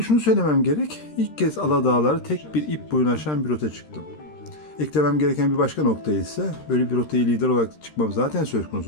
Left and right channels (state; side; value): late; right; 13 ms